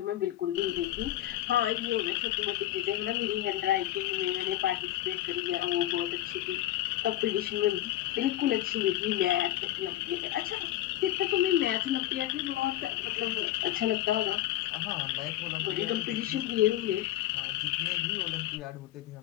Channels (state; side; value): quieter; right; 13.9 dB